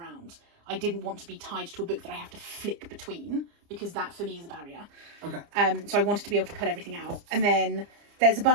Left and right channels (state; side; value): late; left; 30 ms